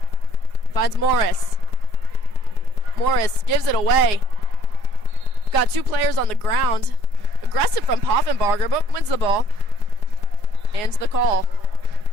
Finds Morris. Morris gives it away. Got two players on the ground. Aggressive from Poffenbarger, but wins the ball. And the call.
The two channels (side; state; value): right; late; 4.8 ms